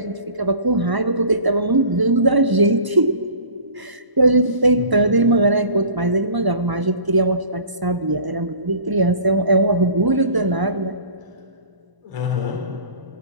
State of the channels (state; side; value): late; left; 1.0 ms